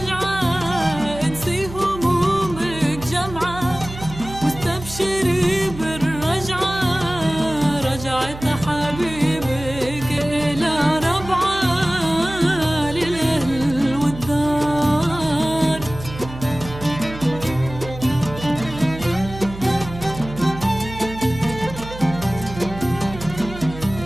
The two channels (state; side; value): noise; right; hum, 12 dB below the sound